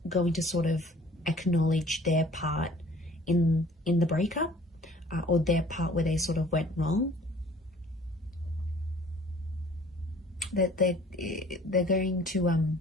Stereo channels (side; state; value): both; normal; correlation 0.52